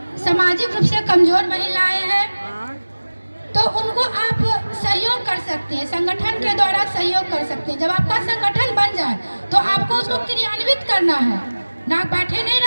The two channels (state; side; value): inverted; both; correlation -1.00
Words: सामाजिक रूप से कमजोर महिलाएं हैं, तो उनको आप सहयोग कर सकते हैं, संगठन के द्वारा सहयोग कर सकते हैं। जब आपका संगठन बन जाए तो आपको उसको क्रियान्वित करना है, ना बैठे नहीं